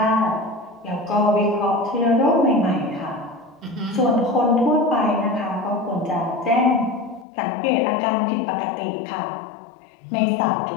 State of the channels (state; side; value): drops out; right; at 7.2 s